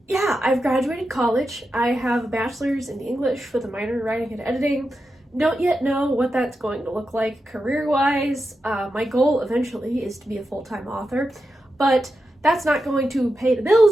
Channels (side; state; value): both; normal; correlation 0.88